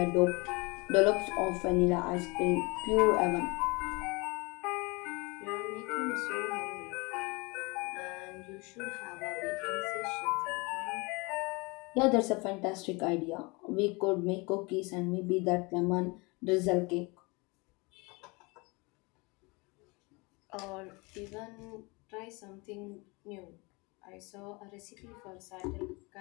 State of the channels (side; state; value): right; quieter; 27.0 dB